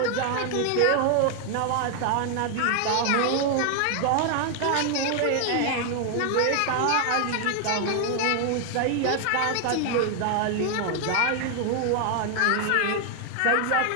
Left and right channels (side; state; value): both; different; correlation 0.00